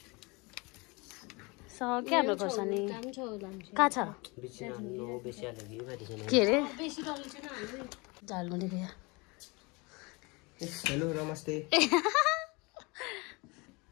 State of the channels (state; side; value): quieter; right; 26.9 dB